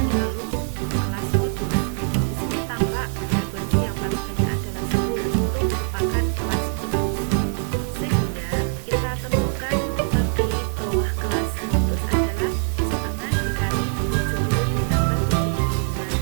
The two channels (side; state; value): left; silent; digital silence